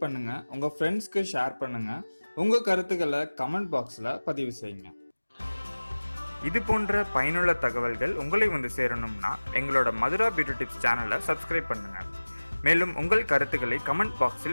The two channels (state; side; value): inverted; both; correlation -1.00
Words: பண்ணுங்க, உங்க ஃப்ரெண்ட்ஸ்க்கு ஷேர் பண்ணுங்க, உங்க கருத்துக்களை கமெண்ட் பாக்ஸ்ல பதிவு செய்யுங்க. இது போன்ற பயனுள்ள தகவல்கள் உங்களை வந்து சேரணும்னா எங்களோட மதுரா பியூட்டி டிப்ஸ் சேனலை சப்ஸ்கிரைப் பண்ணுங்க. மேலும் உங்கள் கருத்துக்களை கமெண்ட்